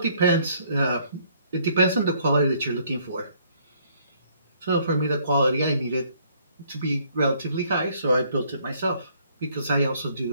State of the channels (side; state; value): both; inverted; correlation -0.64